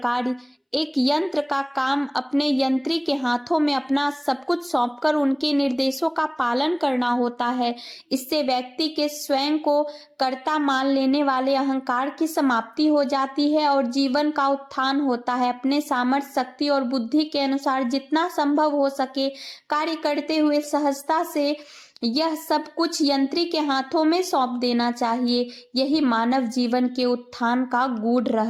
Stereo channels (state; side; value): identical; both; correlation 1.00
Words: एक यंत्र का काम अपने यंत्री के हाथों में अपना सब कुछ सौंपकर उनके निर्देशों का पालन करना होता है, इससे व्यक्ति के स्वयं को कर्ता मान लेने वाले अहंकार की समाप्ति हो जाती है और जीवन का उत्थान होता है। अपने सामर्थ्य, शक्ति और बुद्धि के अनुसार जितना संभव हो सके कार्य करते हुए सहजता से यह सब कुछ यंत्री के हाथों में सौंप देना चाहिए। यही मानव जीवन के उत्थान का गूढ़